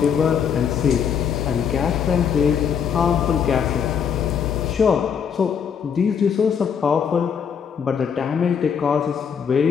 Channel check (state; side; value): quieter; right; 7.3 dB